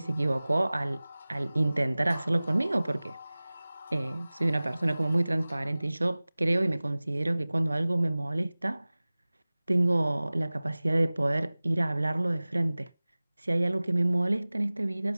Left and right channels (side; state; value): both; inverted; correlation -0.99